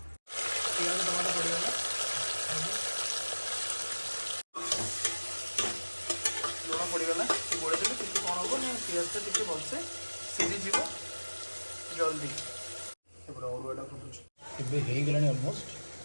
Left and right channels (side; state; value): both; inverted; correlation -1.00